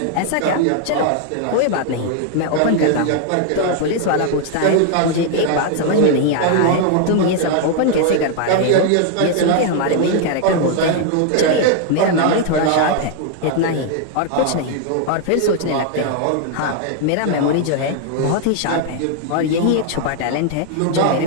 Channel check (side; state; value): both; different; correlation 0.00